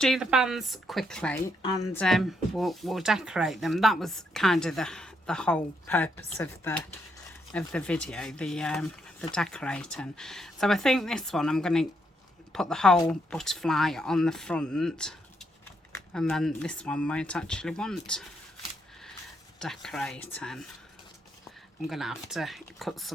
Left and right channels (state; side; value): normal; both; correlation 0.77